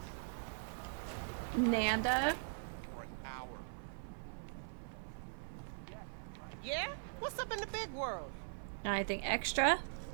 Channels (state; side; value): silent; left; 50 dB below the other